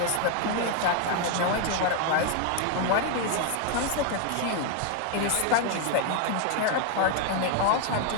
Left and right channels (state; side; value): different; both; correlation 0.01